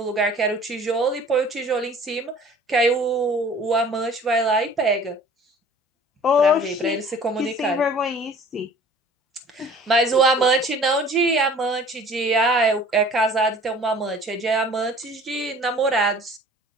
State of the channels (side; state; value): both; normal; correlation 0.49